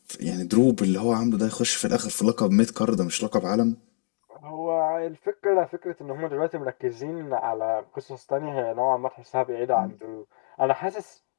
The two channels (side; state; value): right; silent; 61 dB below the other